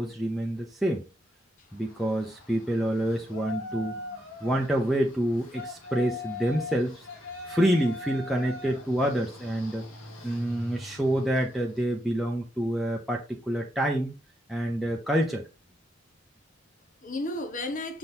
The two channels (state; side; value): normal; both; correlation 0.81